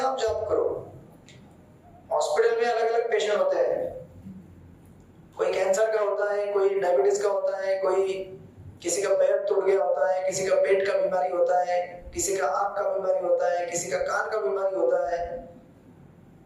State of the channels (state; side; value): identical; both; correlation 1.00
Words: आप जाप करो। हॉस्पिटल में अलग अलग पेशेंट होते हैं, कोई कैंसर का होता है, कोई डायबिटीज का होता है, कोई किसी का पैर टूट गया होता है, किसी का पेट का बीमारी होता है, किसी का आंख का बीमारी होता है, किसी का कान का बीमारी होता है,